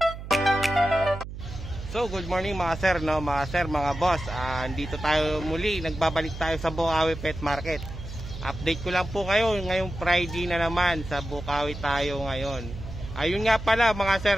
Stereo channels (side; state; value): right; noise; hum, 10 dB below the sound